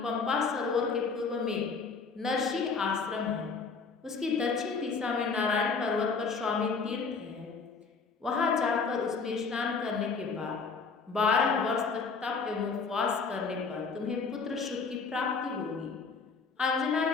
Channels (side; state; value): right; quieter; 4.9 dB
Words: सरोवर के पूर्व में नरसिंह आश्रम है। उसकी दक्षिण दिशा में नारायण पर्वत पर स्वामी तीर्थ है। वहां जाकर उसमें स्नान करने के बाद 12 वर्ष तक तप एवं उपवास करने पर तुम्हें पुत्र सुख की प्राप्ति होगी। अंजना